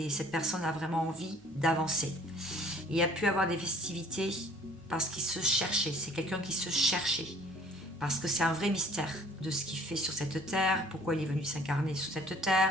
cette personne a vraiment envie d'avancer. Il y a pu avoir des festivités parce qu'il se cherchait. C'est quelqu'un qui se cherchait. Parce que c'est un vrai mystère de ce qu'il fait sur cette terre, pourquoi il est venu s'incarner sur cette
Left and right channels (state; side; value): normal; both; correlation 0.54